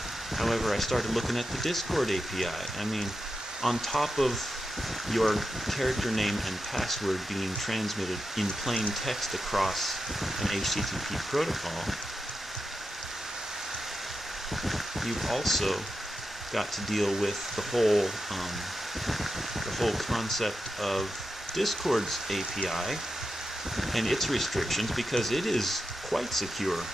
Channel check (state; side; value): normal; both; correlation 0.89